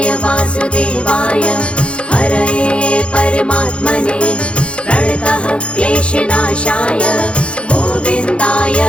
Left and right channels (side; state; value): right; late; 0.058 ms